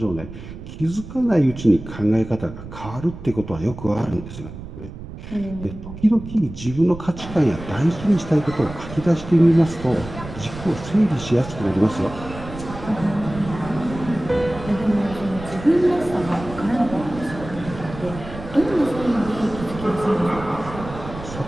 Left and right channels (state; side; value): noise; right; rumble, 12 dB below the sound